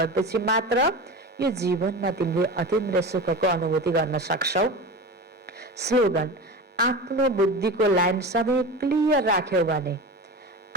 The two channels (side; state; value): both; normal; correlation 0.28